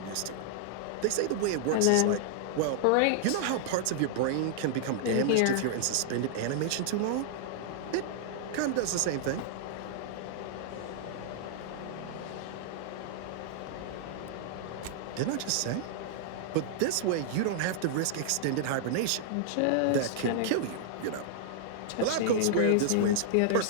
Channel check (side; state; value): both; different; correlation -0.01